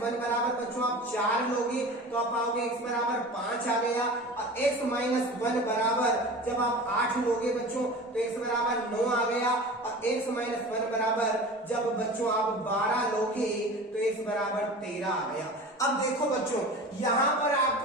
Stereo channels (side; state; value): both; normal; correlation 0.36